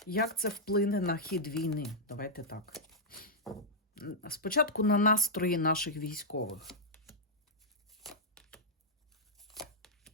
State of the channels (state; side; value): normal; both; correlation -0.07